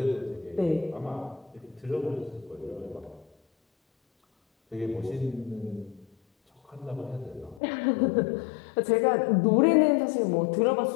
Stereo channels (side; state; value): right; drops out; at 7.6 s